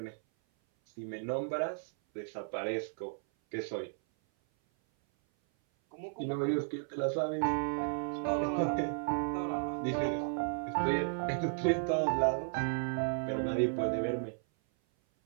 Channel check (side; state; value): left; silent; 55 dB below the other